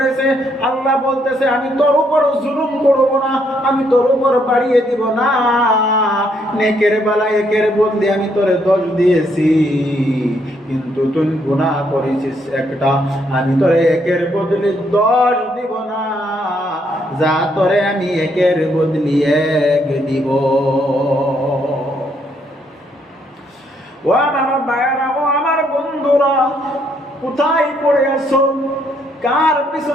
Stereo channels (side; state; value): both; normal; correlation 0.72